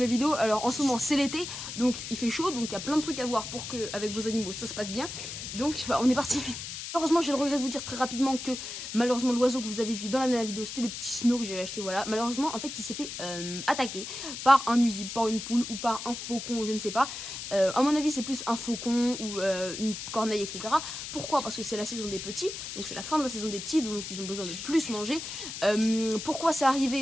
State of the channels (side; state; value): left; noise; hiss, 8 dB below the sound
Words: vidéo. Alors en ce moment c'est l'été, donc il fait chaud, donc il y a plein de trucs à voir pour que avec vos animaux ça se passe bien. Donc on est parti. Malheureusement j'ai le regret de vous dire très rapidement que malheureusement l'oiseau que vous avez vu dans la dernière vidéo c'était le petit snow que j'avais acheté, voilà. Malheureusement en fait il s'est fait attaquer par un nuisible, par une poule ou par un faucon, je ne sais pas. À mon avis c'est plus un faucon ou une corneille, etc. Pourquoi? Parce que c'est la saison des petits, donc c'est la fin de la saison des petits, donc ils ont besoin de plus manger. Pourquoi c'est